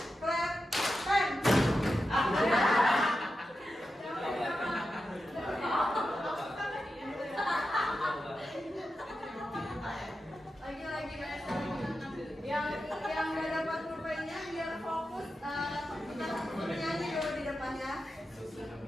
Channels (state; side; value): normal; both; correlation 0.90